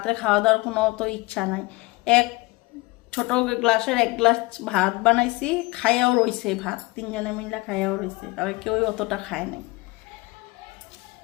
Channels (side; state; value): right; quieter; 23.2 dB